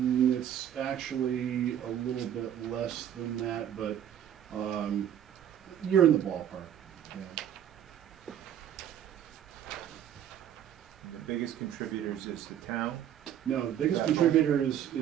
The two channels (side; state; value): left; quieter; 10.2 dB